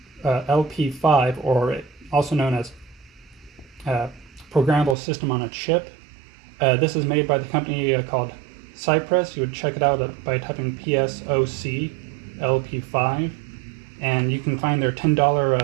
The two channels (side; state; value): left; drops out; at 5.0 s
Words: LP5, or also known as Programmable System on a Chip. This is made by the company called Cypress. You would check it out by typing PSOC LP5, and you can find their